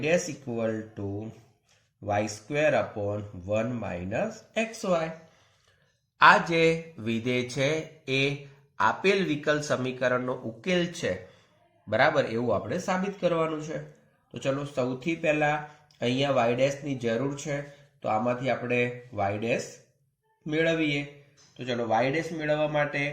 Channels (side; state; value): both; identical; correlation 1.00